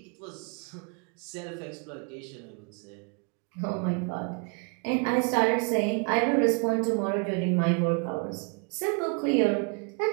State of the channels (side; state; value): left; quieter; 36.5 dB